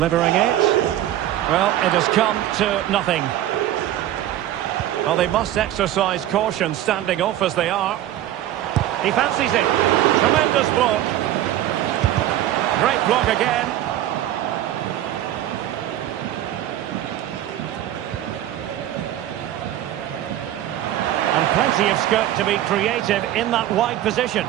it. Well, it has come to nothing. Well, they must exercise caution standing off as they are. He fancies it. Tremendous block. Great block again. And plenty of scope to be creative in that wide position.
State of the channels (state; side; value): quieter; left; 12.9 dB